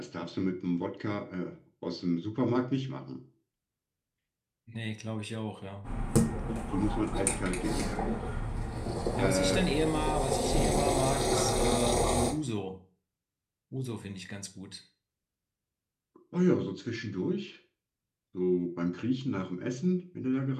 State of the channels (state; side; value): identical; both; correlation 1.00